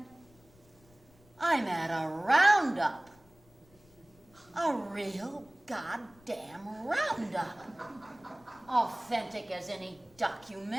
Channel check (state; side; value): noise; left; rumble, 28 dB below the sound